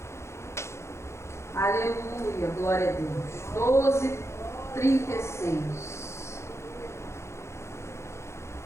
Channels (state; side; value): late; right; 0.13 ms